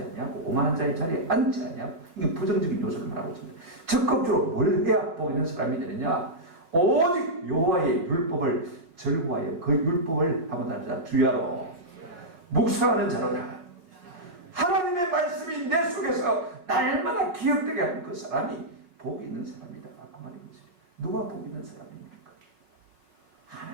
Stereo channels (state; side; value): late; left; 5.5 ms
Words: 아니하고 오만한 자의 자리에 앉지 아니하고 이게 부정적인 요소를 말하고 있습니다. 적극적으로 뭘 해야 복 있는 사람이 되느냐? 오직 여호와의 율법을 절구하여 그 율법을 한번 다르자 주야로 묵상하는 자로다. 하나님의 말씀이 내 속에서 날마다 기억되게 하는 그 사람이 복이 있는 사람이다. 그 말인 것입니다. 누가 복 있는 사람입니까?